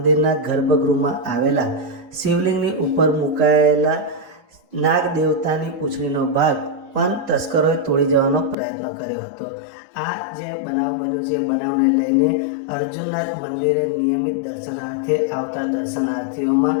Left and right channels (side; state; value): right; drops out; at 8.6 s